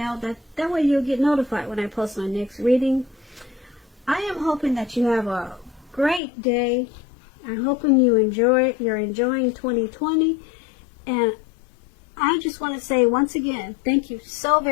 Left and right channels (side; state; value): right; drops out; at 6.2 s